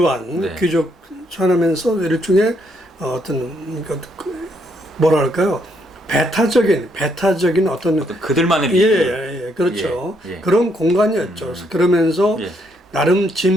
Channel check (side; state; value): both; normal; correlation 0.73